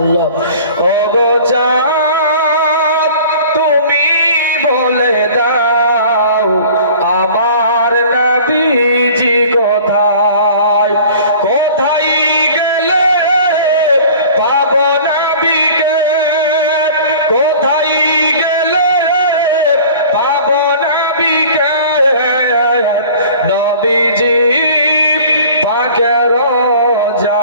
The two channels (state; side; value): inverted; both; correlation -0.45